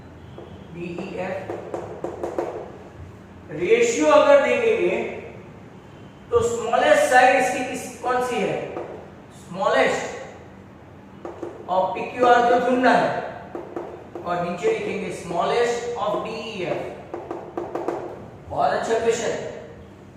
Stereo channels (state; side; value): identical; both; correlation 1.00